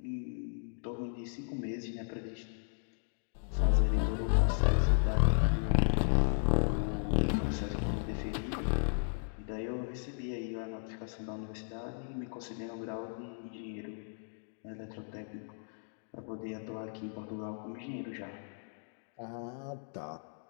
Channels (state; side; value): silent; right; digital silence